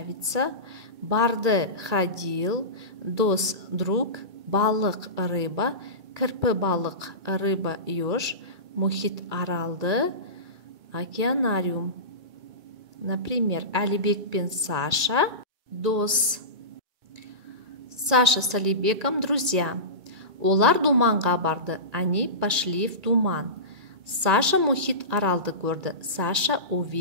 Барды, ходил. Дос, друг. Балық, рыба. Кірпі балық, рыба, еж. Мұхит Аралды, океанариум. Например, Әлібек пен Саша дос. Саша с Әлібеком друзья. Олар думанға барды. Они пошли в думан. Саша Мұхит Аралды көрді. Саша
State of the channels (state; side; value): late; left; 2.3 ms